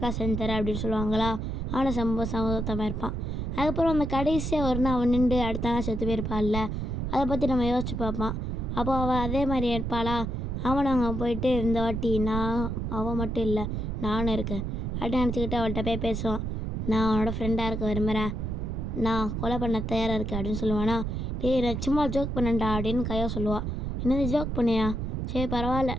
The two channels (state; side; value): noise; right; rumble, 3 dB below the sound